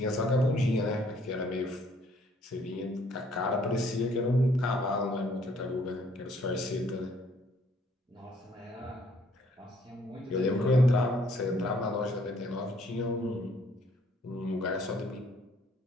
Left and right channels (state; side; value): normal; both; correlation 0.63